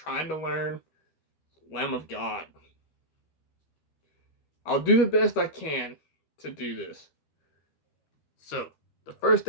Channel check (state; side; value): late; right; 12 ms